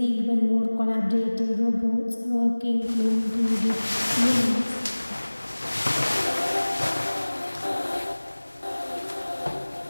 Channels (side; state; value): both; inverted; correlation -1.00